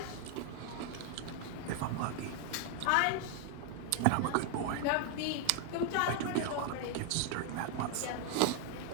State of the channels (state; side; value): different; both; correlation 0.00